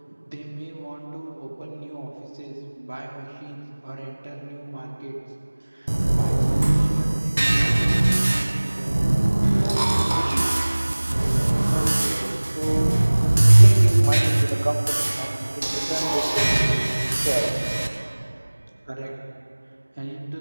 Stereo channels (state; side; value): inverted; both; correlation -1.00